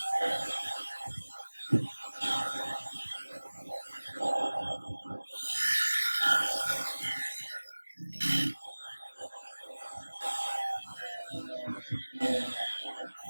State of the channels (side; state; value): both; inverted; correlation -1.00